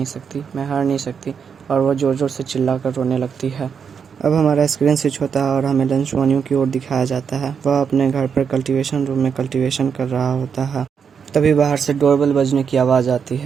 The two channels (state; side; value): quieter; left; 6.7 dB